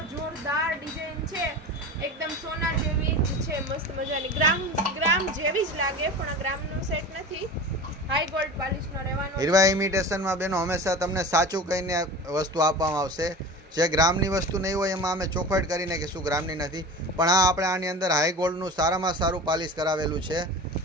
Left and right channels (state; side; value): normal; both; correlation 0.33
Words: જોરદાર ડિઝાઇન છે, એકદમ સોના જેવી જ છે, મસ્ત મજાની ગ્રામ જેવી જ લાગે, પણ આ ગ્રામનો સેટ નથી, હાઈ ગોલ્ડ પોલિશનો રહેવાનો. હીરવા ઇમિટેશનમાં બેનો હંમેશા તમને સાચું કહીને વસ્તુ આપવામાં આવશે. જે ગ્રામની વસ્તુ નહીં હોય એમાં અમે ચોખવટ કરીને કે શું ગ્રામની નથી, પણ આ આપણે આની અંદર હાઈ ગોલ્ડનું સારામાં સારું પાલિશ કરાવેલું છે